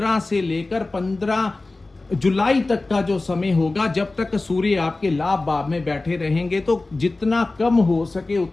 से लेकर 15 जुलाई तक का जो समय होगा, जब तक सूर्य आपके लाभ भाव में बैठे रहेंगे, तो जितना कम हो सके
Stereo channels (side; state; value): right; quieter; 3.2 dB